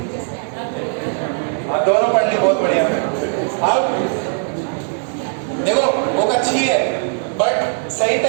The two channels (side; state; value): left; silent; 57 dB below the other